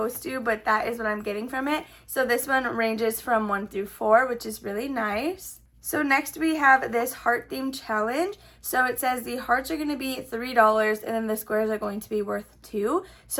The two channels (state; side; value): identical; both; correlation 1.00